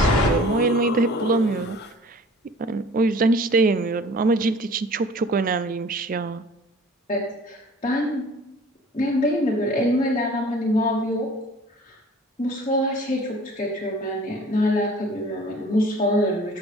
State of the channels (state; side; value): normal; both; correlation 0.48